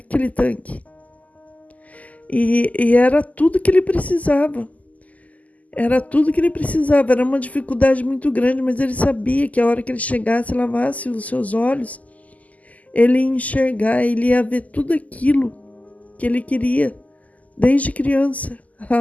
tanque. E era tudo que ele precisava. Era tudo que ele precisava. Era uma dificuldade muito grande, mas ele sabia que a hora que ele chegasse e lavasse os seus olhos, ele ia enxergar, ele ia ver tudo aquilo que ele queria desde criança.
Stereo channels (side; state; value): right; late; 0.075 ms